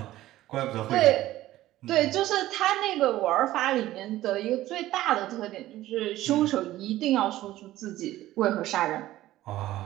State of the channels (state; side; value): quieter; left; 15.2 dB